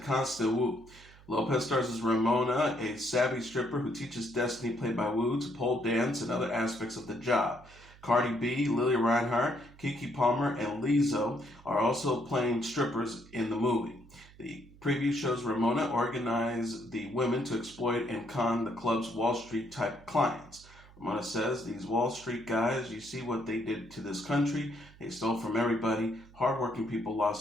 Constance Wu. Lopez stars as Ramona, a savvy stripper who teaches Destiny, played by Wu, to pole dance and other aspects of the job. Cardi B, Lily Reinhart, Keke Palmer, and Lizzo are also playing strippers in the movie. The preview shows Ramona organize the women to exploit and con the club's Wall Street type clients. Ramona says, "These Wall Street guys, you see what they did to this country. They stole from everybody. Hardworking people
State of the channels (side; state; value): right; noise; hum, 23 dB below the sound